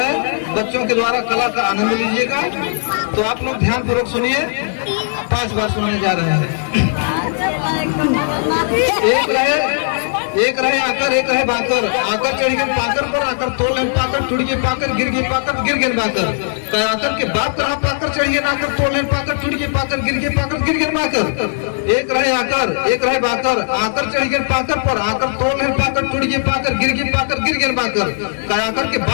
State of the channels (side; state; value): right; silent; digital silence